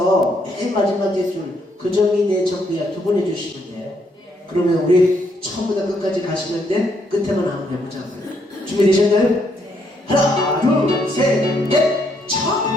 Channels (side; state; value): both; normal; correlation 0.73